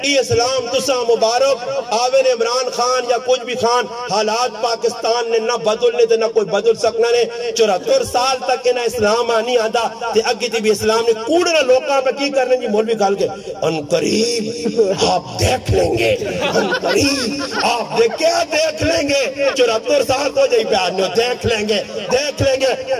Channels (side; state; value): both; identical; correlation 1.00